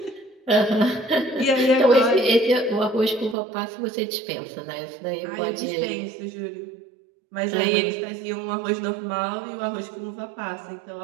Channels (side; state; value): left; drops out; at 3.4 s